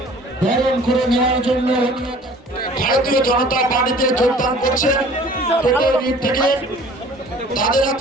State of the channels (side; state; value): both; normal; correlation 0.49